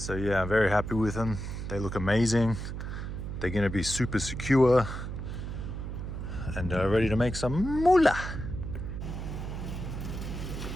yeah, I'm very happy with them. They look amazing. They're gonna be super secure and ready to make some moolah.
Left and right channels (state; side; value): noise; right; hum, 6 dB below the sound